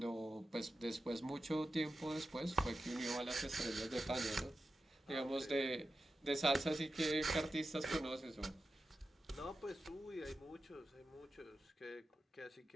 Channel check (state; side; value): normal; both; correlation 0.92